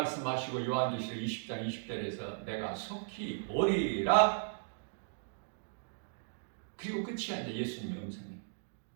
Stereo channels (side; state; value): left; silent; digital silence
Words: 요한계시록 20장 20절에서 내가 속히 오리라. 그리고 끝이야. 이제 예수님의 음성이.